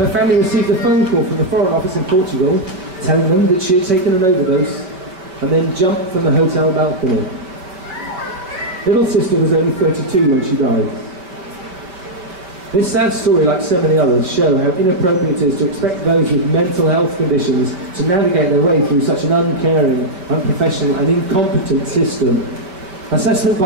family received a phone call from the Foreign Office in Portugal telling them that she had taken an overdose and then jumped from the hotel balcony. Little sister was only 32 when she died. This sad story, like so many others, show how inappropriate it is to expect those with mental health conditions to navigate their way through such an uncaring, unprofessional and incompetent system. Assessment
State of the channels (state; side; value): late; left; 5.2 ms